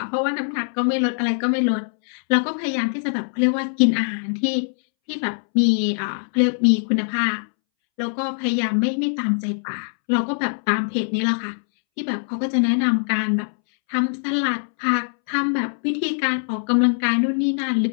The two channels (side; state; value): right; silent; 64 dB below the other